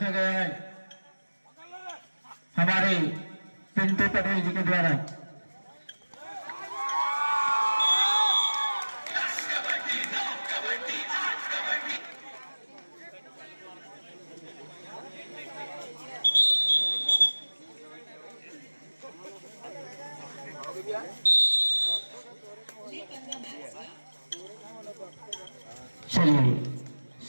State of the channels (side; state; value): both; inverted; correlation -1.00